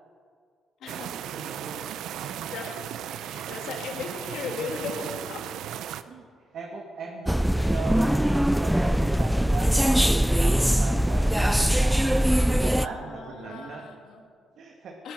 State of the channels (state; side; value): normal; both; correlation 0.96